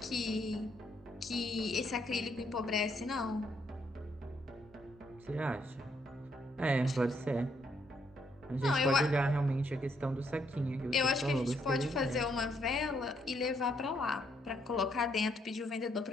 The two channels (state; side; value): normal; both; correlation 0.73